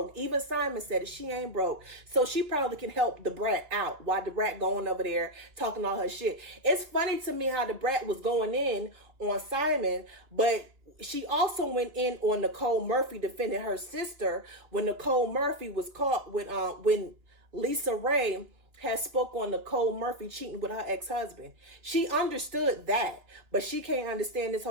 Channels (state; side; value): late; left; 3.6 ms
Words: Even Simon said it. She ain't broke. So she probably can help Da Brat out while Da Brat going over there talking all her shit. It's funny to me how Da Brat was going in on Simon, but she also went in on Nicole Murphy defending her sister when Nicole Murphy was caught with when Lisa Ray had spoke on Nicole Murphy cheating with her ex-husband. She understood that, but she can't understand this